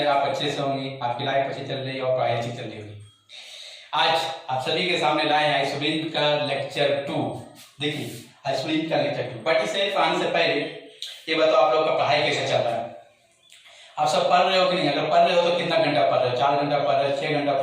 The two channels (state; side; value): identical; both; correlation 1.00